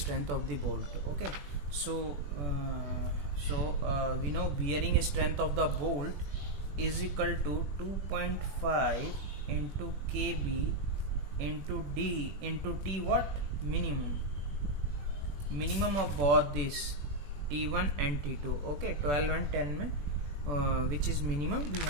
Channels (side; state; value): left; late; 21 ms